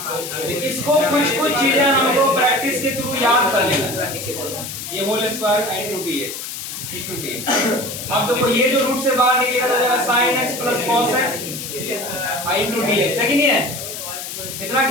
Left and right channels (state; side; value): noise; left; hiss, 8 dB below the sound